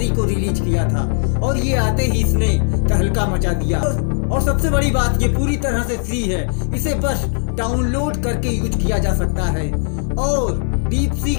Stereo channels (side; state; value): right; silent; 58 dB below the other